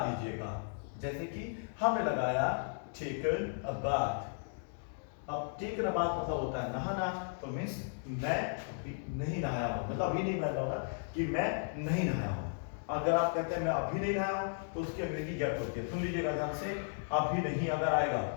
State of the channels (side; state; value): right; silent; digital silence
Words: जैसे कि हमने लगाया टेकन अ बाथ। अब टेकन अ बाथ मतलब होता है नहाना, तो मीन्स मैं अभी नहीं नहाया हूं, मतलब अभी नहीं मैं होगा कि मैं नहीं नहाया हूं। अगर आप कहते हैं मैं अभी नहीं नहाया हूं, तो उसकी अंग्रेजी गेट होती है, सुन लीजिएगा ध्यान से। अभी नहीं अगर आएगा,